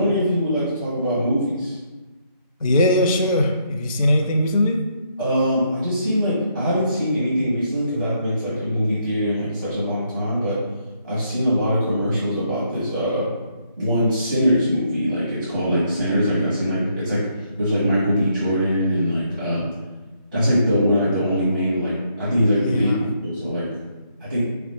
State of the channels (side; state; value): both; inverted; correlation -0.74